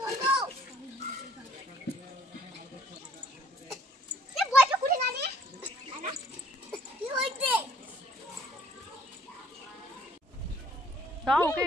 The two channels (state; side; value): normal; both; correlation 0.62